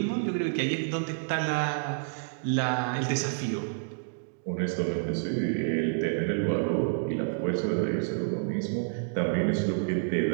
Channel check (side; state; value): left; silent; digital silence